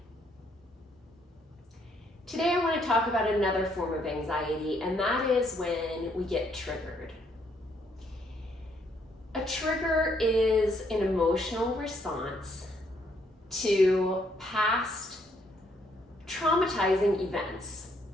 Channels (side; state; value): both; normal; correlation 0.70